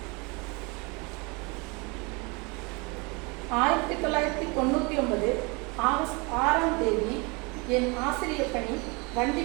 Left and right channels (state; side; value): quieter; left; 28.6 dB